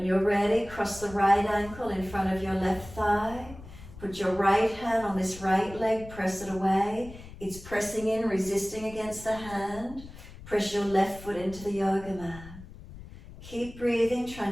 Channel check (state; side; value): noise; left; rumble, 16 dB below the sound